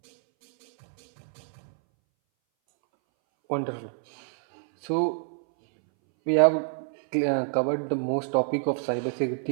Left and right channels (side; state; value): left; silent; 60 dB below the other